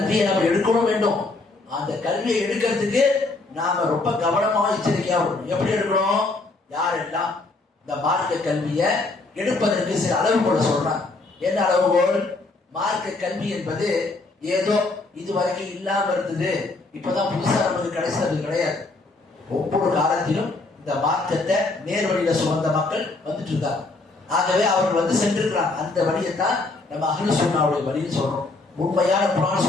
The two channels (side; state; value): right; quieter; 3.4 dB